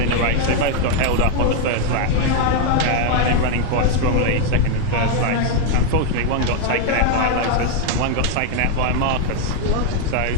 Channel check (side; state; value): both; different; correlation 0.01